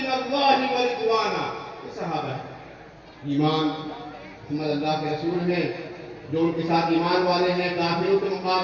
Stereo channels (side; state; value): both; identical; correlation 1.00